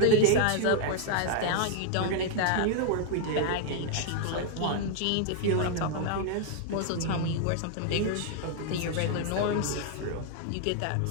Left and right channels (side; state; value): both; different; correlation 0.00